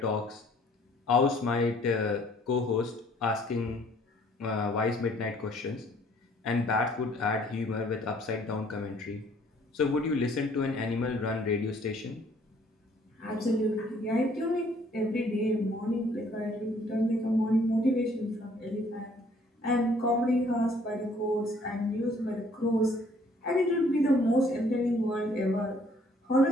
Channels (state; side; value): normal; both; correlation 0.61